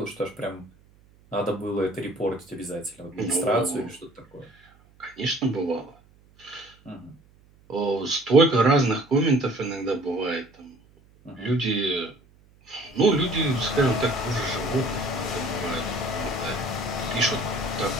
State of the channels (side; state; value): right; noise; hum, 29 dB below the sound